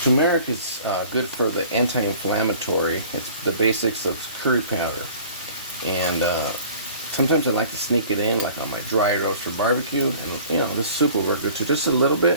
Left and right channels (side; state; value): both; inverted; correlation -0.48